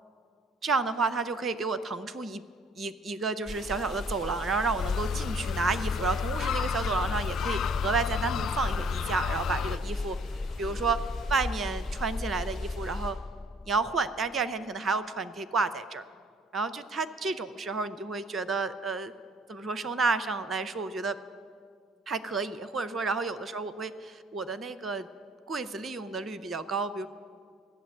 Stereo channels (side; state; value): both; normal; correlation 0.58